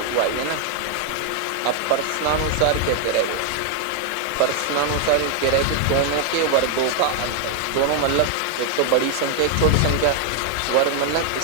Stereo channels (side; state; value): both; different; correlation 0.00